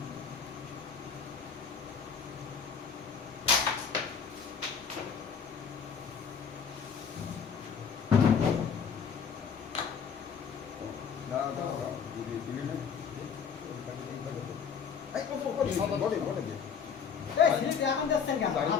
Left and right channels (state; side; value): quieter; right; 6.7 dB